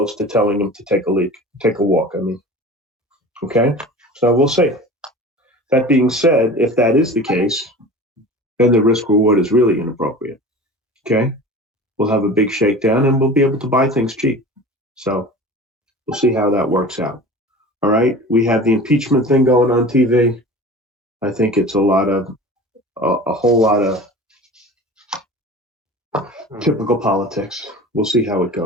to telling them to take a walk. Okay, so we'll see. That being said, if that is the case, then the risk reward is really inappropriate. Okay, we'll have a big shakedown and we'll be able to buy things cheap. So we'll see how that works out. All right, we have the impeachment thing going on TV. I think it's a whole lot of typical politics. We'll see how it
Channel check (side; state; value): both; normal; correlation 0.38